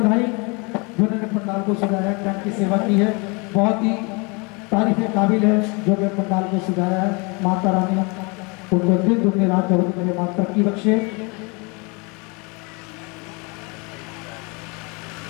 जिन्होंने पंडाल को सजाया, कैंप की सेवा की है, बहुत ही तारीफ के काबिल है जो कि पंडाल को सजाया है। माता रानी उनको दिन दुनिया रात चौबीस मेरे माँ तरक्की बख्शे।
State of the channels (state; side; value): quieter; right; 29.9 dB